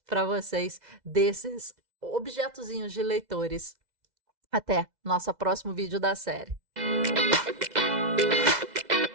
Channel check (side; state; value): left; late; 2.0 ms